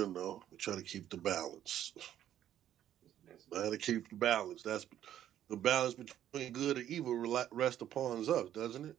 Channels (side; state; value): left; quieter; 11.2 dB